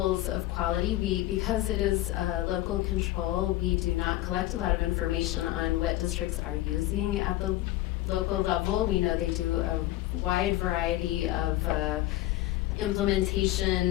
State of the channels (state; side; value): quieter; right; 16.0 dB